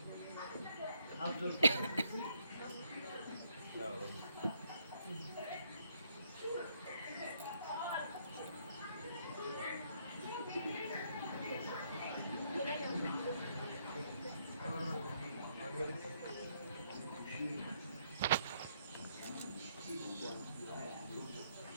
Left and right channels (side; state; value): both; inverted; correlation -0.71